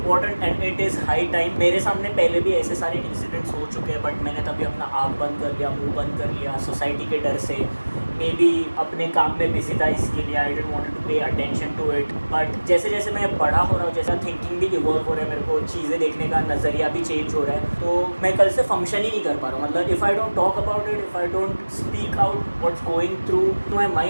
and it is high time. मेरे सामने पहले भी ऐसे सारे इंसिडेंट्स हो चुके हैं, बट मैंने तभी अपना आँख बंद कर लिया, मुंह बंद कर लिया, सोसाइटी के डर से, मे बी अपने काम में बिजी था इसके लिए, I didn't want to pay attention to it. But जैसे जैसे मैं बड़ा हो रहा हूँ, जैसा थिंकिंग भी इवॉल्व हो रहा है, मेरे को चीज़ें देखने का नज़रिया भी चेंज हो रहा है, तो मैं कल से फंक्शन ही नहीं कर पा रहा हूँ। मतलब if I don't talk about it, if I don't speak out what's going through my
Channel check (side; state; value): both; inverted; correlation -1.00